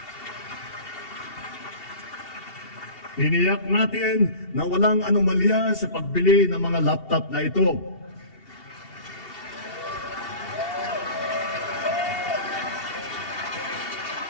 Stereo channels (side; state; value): right; late; 2.7 ms